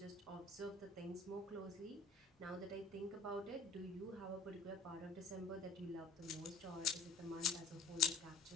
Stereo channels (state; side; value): quieter; right; 3.8 dB